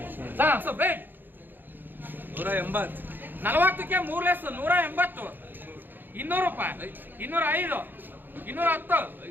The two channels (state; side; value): late; left; 0.092 ms